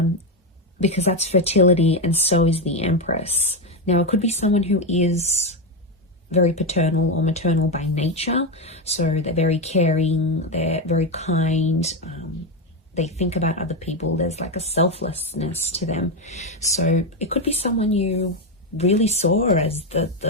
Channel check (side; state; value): both; normal; correlation 0.09